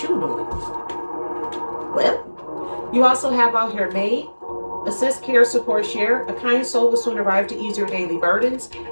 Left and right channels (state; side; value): inverted; both; correlation -1.00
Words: you doing. Well, you also have out here maid. Assist, care, support, share. A kind soul will soon arrive to ease your daily burdens.